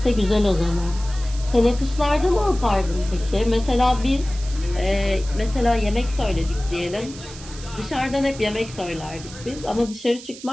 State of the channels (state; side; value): noise; right; hiss, 16 dB below the sound